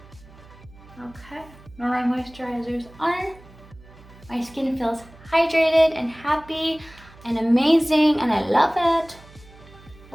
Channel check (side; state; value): right; noise; hum, 23 dB below the sound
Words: Okay, now my moisturizer's on. My skin feels hydrated and happy and amazing, and I love it.